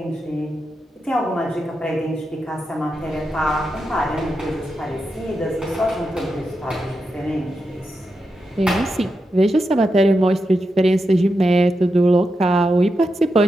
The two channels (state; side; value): normal; both; correlation 0.87